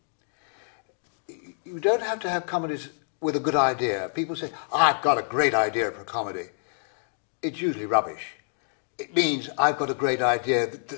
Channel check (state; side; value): silent; right; digital silence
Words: You don't have to have comedies with a good idea. People say, I've got a great idea for a comedy. It's usually rubbish. It means I've got a great idea